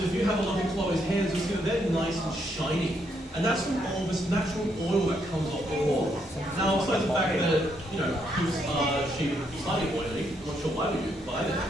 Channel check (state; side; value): normal; both; correlation 0.75